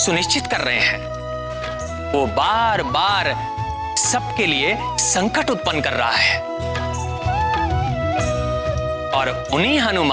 कर रहे हैं। वो बार बार सबके लिए संकट उत्पन्न कर रहा है और उन्हीं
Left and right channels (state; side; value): identical; both; correlation 1.00